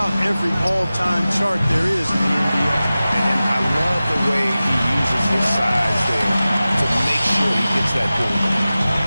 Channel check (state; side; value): inverted; both; correlation -0.96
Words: every all-time chart there is in the NBA. And I love the way he uses his size there to make sure he gets that goal.